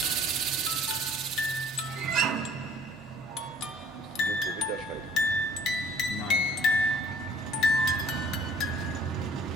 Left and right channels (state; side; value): normal; both; correlation 0.55